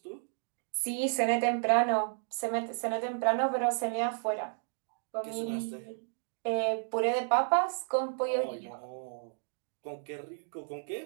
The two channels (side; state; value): left; silent; 56 dB below the other